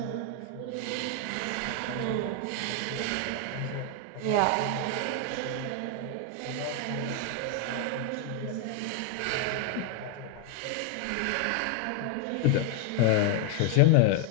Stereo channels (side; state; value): both; different; correlation 0.00